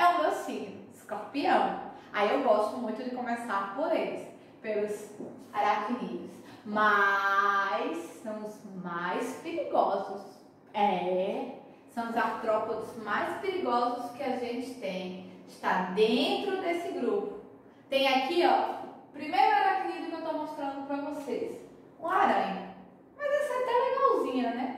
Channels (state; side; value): identical; both; correlation 1.00